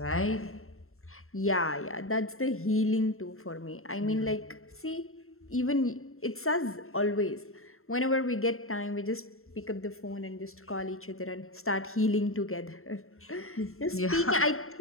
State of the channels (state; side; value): late; right; 0.62 ms